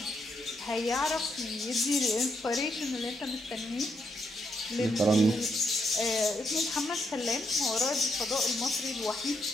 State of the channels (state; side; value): normal; both; correlation 0.78